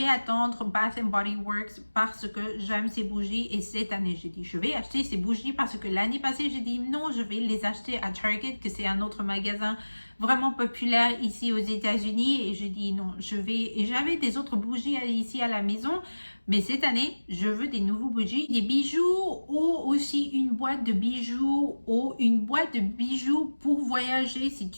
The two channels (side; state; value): both; inverted; correlation -1.00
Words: attendre Bath and Body Works parce que j'aime ces bougies. Et cette année, j'ai dit, je vais acheter ces bougies parce que l'année passée, j'ai dit non, je vais les acheter à Target, que c'est un autre magasin vraiment populaire ici aux États-Unis. Et je dis non, et j'avais des autres bougies ici à la maison. Mais cette année, je veux des nouveaux bougies, des bijoux ou aussi une boîte de bijoux ou une boîte de bijoux pour voyager. Si